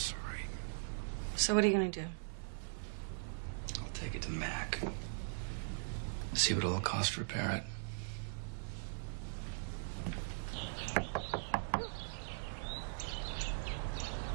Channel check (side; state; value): left; silent; 51 dB below the other